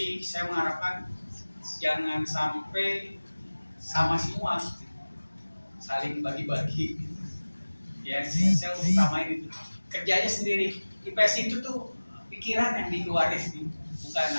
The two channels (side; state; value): both; inverted; correlation -1.00